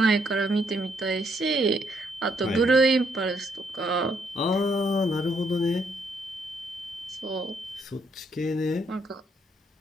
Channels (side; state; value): both; normal; correlation 0.72